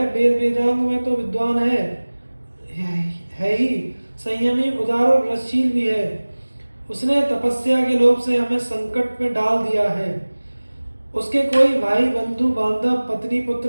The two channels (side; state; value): both; inverted; correlation -1.00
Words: वेद वेदांग में तो विद्वान है ही, संयमी, उदार और रसशील भी है। उसने तपस्या के लोभ से हमें संकट में डाल दिया है। उसके कोई भाई बंधु बांधव पत्नी पुत्र